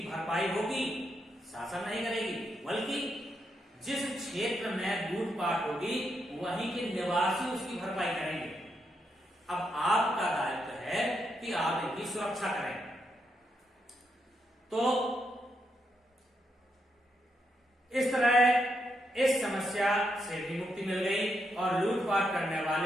भरपाई होगी, शासन नहीं करेगी, बल्कि जिस क्षेत्र में लूटपाट होगी वहीं के निवासी उसकी भरपाई करेंगे। अब आपका दायित्व है कि आप इनकी सुरक्षा करें। तो इस तरह इस समस्या से भी मुक्ति मिल गई और लूटपाट करने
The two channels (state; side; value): normal; both; correlation 0.81